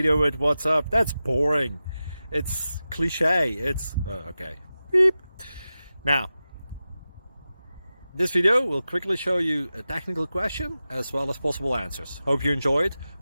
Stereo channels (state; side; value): inverted; both; correlation -0.93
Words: with what's up. That's boring. It's cliche. It's okay. Beep. Now, this video will quickly show you a technical question as well as possible answers. Hope you enjoyed.